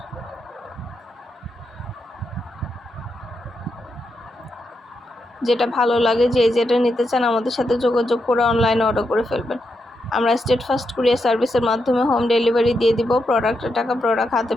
যেটা ভালো লাগে, যে যেটা নিতে চান আমাদের সাথে যোগাযোগ করে অনলাইনে অর্ডার করে ফেলবেন। আমরা স্টেট ফার্স্ট কুরিয়ার সার্ভিসের মাধ্যমে হোম ডেলিভারি দিয়ে দিব। প্রোডাক্টের টাকা প্রোডাক্ট হাতে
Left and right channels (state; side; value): normal; both; correlation 0.83